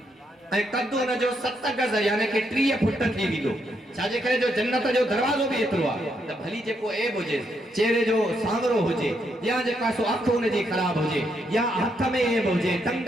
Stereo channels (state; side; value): normal; both; correlation 0.77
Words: ऐं कद उन जो 7 गज यानी कि 30 फुट थी वेंदो छाजे करे जो जन्नत जो दरवाज़ो बि एतिरो आहे त भली जेको ऐब हुजे चेहरे जो सांवरो हुजे या जेका सो अख उन जी ख़राब हुजे या हथ में ऐब हुजे टंग